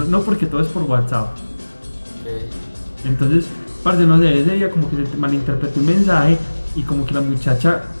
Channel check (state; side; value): inverted; both; correlation -1.00